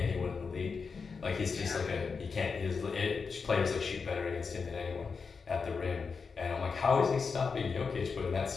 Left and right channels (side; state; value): right; quieter; 5.2 dB